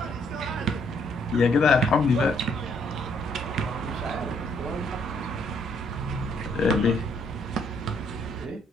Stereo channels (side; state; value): both; normal; correlation 0.69